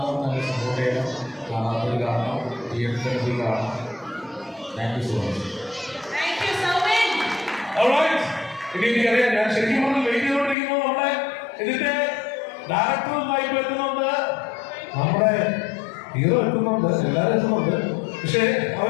നല്ല സപ്പോർട്ട് ചെയ്യണം, കാണാത്തത് കാണണം, തിയേറ്ററിൽ കാണണം. Thank you so much. എനിക്കറിയാം, ഞാൻ ശരിക്കും പറഞ്ഞ് വെയിറ്റ് ചെയ്തുകൊണ്ടിരിക്കുമ്പോൾ നമ്മുടെ ഇതിന്റെ ഡയറക്ടറുമായി എത്തുന്നുണ്ട്, നമ്മുടെ ഹീറോ എത്തുന്നുണ്ട്, എല്ലാവരും എത്തുന്നുണ്ട്. പക്ഷെ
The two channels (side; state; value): right; drops out; at 10.6 s